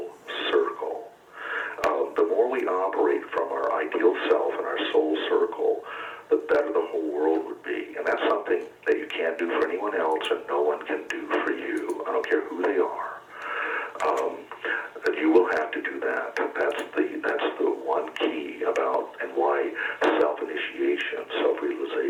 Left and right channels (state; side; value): identical; both; correlation 1.00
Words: circle. The more we operate from our ideal self and our soul circle, the better the whole world would be. And that's something that you can't do for anyone else and no one can do for you. I don't care who they are. You will have to do that. That's the one key about and why self-initiation,